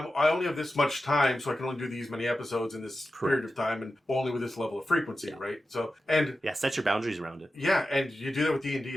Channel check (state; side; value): normal; both; correlation 0.92